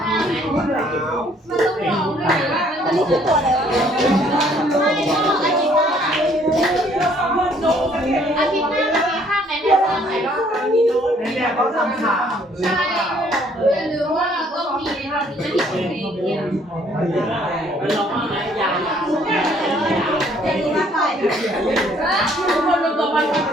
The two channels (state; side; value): normal; both; correlation 0.62